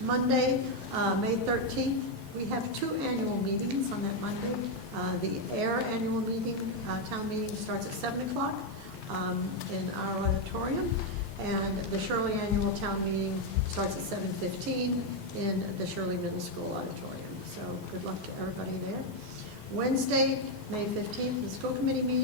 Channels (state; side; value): late; right; 4.9 ms